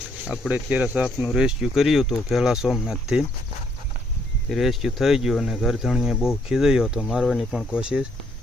આપણે અત્યારે સાપનું રેસ્ક્યુ કર્યું હતું પહેલા સોમનાથથી। રેસ્ક્યુ થઈ ગયું અને ઘરધણીએ બહુ ખીજાયો હતો, મારવાની પણ કોશિશ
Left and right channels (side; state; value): both; normal; correlation 0.70